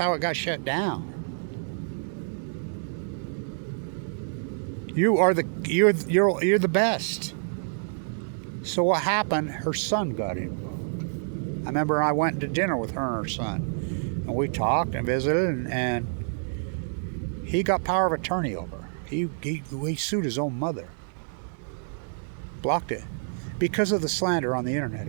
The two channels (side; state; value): left; silent; digital silence